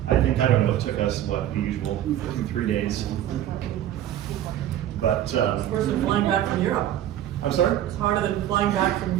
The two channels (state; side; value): quieter; left; 11.9 dB